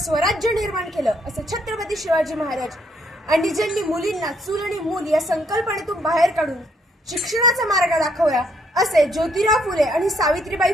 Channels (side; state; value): both; normal; correlation 0.70